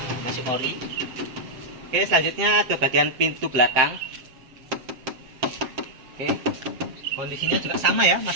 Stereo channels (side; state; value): left; late; 7.7 ms